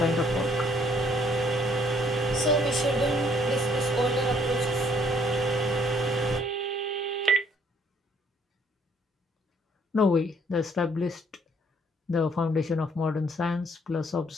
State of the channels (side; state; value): both; normal; correlation 0.63